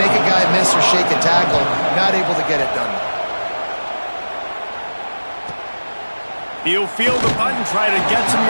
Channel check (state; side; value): inverted; both; correlation -1.00